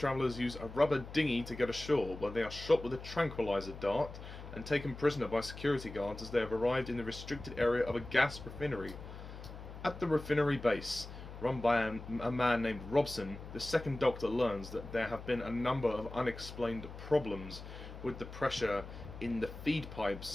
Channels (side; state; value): left; noise; hum, 12 dB below the sound